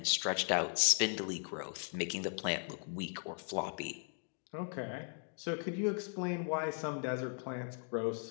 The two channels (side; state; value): right; silent; 53 dB below the other